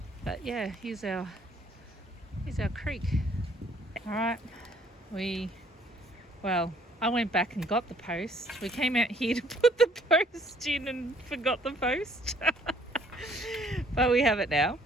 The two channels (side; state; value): both; normal; correlation 0.61